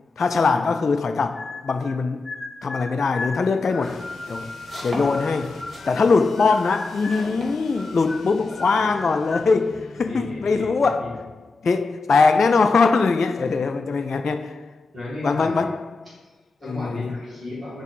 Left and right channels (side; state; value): right; quieter; 3.9 dB